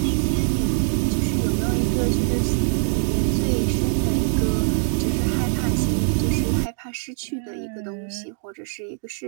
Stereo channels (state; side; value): silent; left; 58 dB below the other